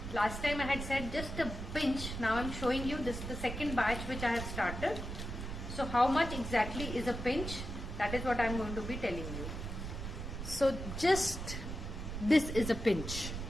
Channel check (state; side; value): noise; right; rumble, 6 dB below the sound